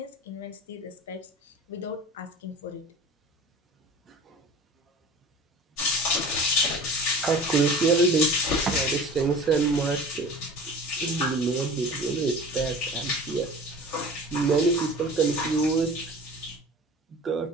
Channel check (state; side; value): normal; both; correlation 0.39